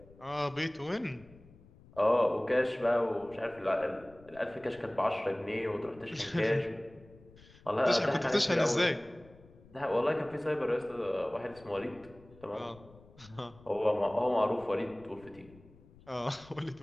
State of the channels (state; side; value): noise; left; rumble, 24 dB below the sound